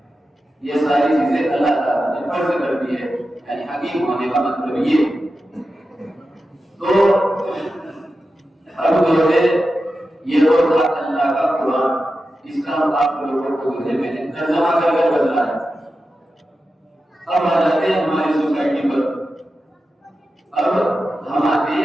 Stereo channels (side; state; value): both; normal; correlation 0.91